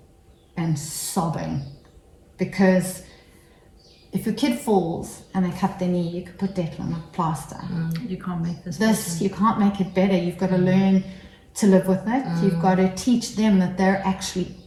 And sobbing. Because if your kid falls and they cut their knee, you could put that on a plaster. You can't make this better. You can't make it better. You've got to learn to live with it. You've got to teach them that they're actually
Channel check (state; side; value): identical; both; correlation 1.00